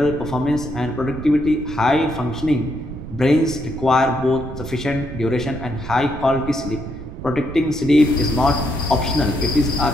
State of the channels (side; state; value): right; noise; rumble, 10 dB below the sound